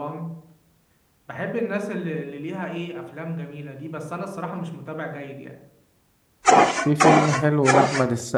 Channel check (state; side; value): identical; both; correlation 1.00